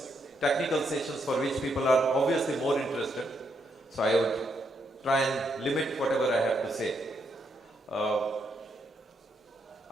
technical sessions for which people are obviously more interested. So I would try and limit whatever I have to say.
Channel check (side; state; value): both; normal; correlation 0.77